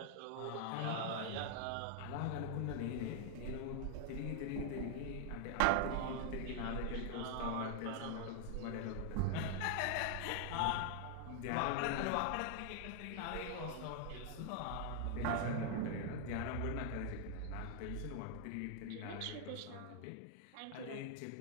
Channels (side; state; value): both; different; correlation 0.00